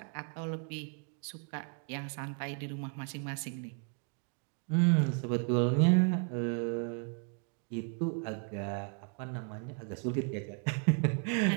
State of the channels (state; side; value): quieter; left; 39.1 dB